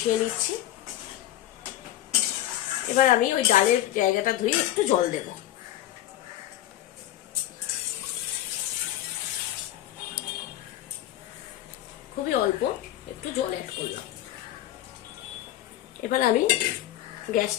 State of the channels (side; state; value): right; quieter; 13.6 dB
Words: নিচ্ছি। এবার আমি ওই ডালের জায়গাটা ধুয়ে একটু জল দেব। খুবই অল্প একটু জল অ্যাড করলাম। এবার আমি